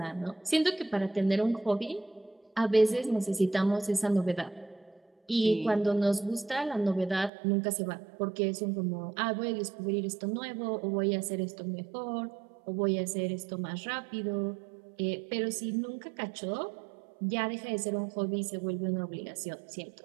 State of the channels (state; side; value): drops out; left; at 7.3 s